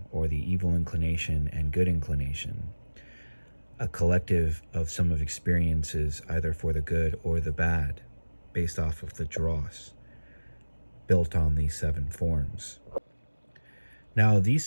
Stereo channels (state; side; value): inverted; both; correlation -1.00